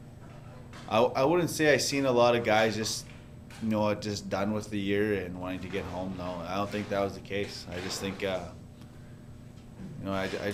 I wouldn't say I seen a lot of guys just done with the year and wanting to get home. No, I don't think that was the case. I just think, I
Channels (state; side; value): identical; both; correlation 1.00